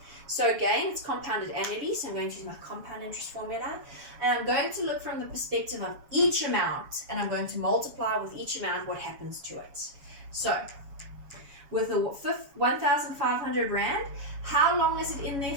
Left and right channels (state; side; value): late; left; 7.2 ms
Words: So again, it's compounded annually. So I'm going to use my compound interest formula. And I'm going to look from the perspective of each amount. And I'm going to multiply with each amount what happens to it. So with the 1,500 Rand, how long is it in there